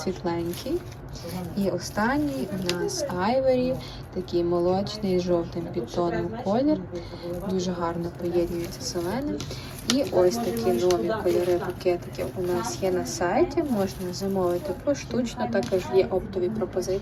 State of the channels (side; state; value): both; identical; correlation 1.00